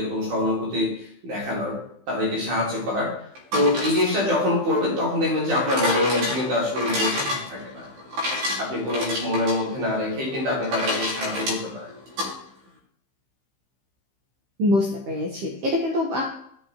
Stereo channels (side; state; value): left; late; 15 ms